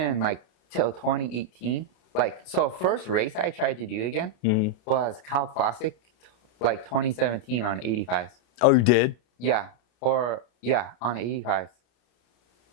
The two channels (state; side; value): late; right; 33 ms